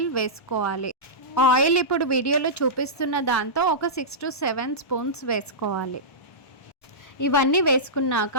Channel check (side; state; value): right; late; 1.1 ms